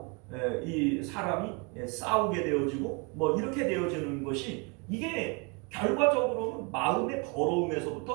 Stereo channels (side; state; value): left; quieter; 31.2 dB